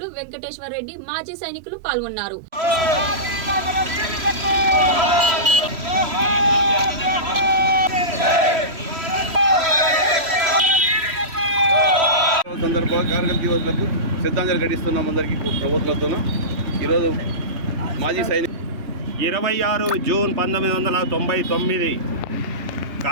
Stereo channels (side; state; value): left; late; 3.1 ms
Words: వెంకటేశ్వర్ రెడ్డి, మాజీ సైనికులు పాల్గొన్నారు. సందర్భంగా కార్గిల్ దివస్లకు శ్రద్ధాంజలి ఘటిస్తున్నాం. అందరికీ ప్రభుత్వంతో ఈరోజు మాజీ సైనిక 26 జూన్ 1999